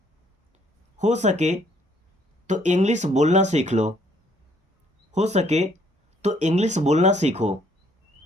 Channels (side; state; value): both; normal; correlation 0.65